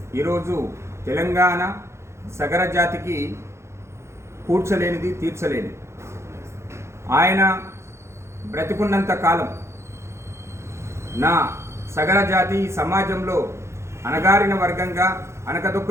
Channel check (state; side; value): late; left; 0.13 ms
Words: ఈరోజు తెలంగాణ సగర జాతికి కూర్చలేనిది, తీర్చలేనిది. ఆయన బ్రతికున్నంత కాలం నా సగర జాతి సమాజంలో అణగారిన వర్గంగా